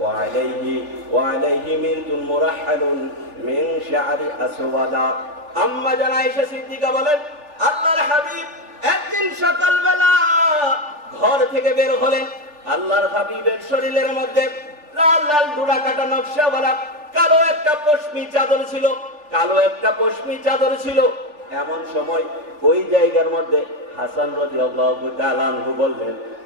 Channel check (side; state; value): left; late; 3.3 ms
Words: ওয়া আলাইহি মিরতুন মুরাহহালুন মিন শা'রি আসওয়াদা। আম্মা জান আয়েশা সিদ্দিকা বলেন আল্লাহর হাবিব একদিন সকালবেলা ঘর থেকে বের হলেন। আল্লাহর হাবিবের শরীরের মধ্যে লাল লাল ডোরা কাটা নকশাওয়ালা কালো একটা পশমি চাদর ছিল, কালো একটা পশমি চাদর ছিল। এমন সময় ওই জায়গার মধ্যে হাসান রাদিয়াল্লাহু তাআলা আনহু বললেন,